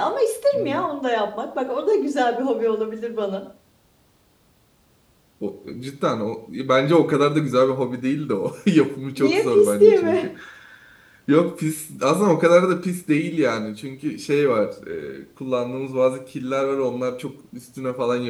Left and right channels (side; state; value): both; identical; correlation 1.00